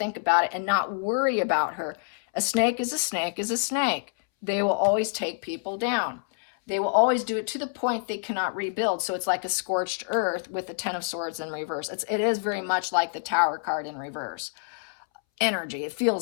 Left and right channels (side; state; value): right; silent; 60 dB below the other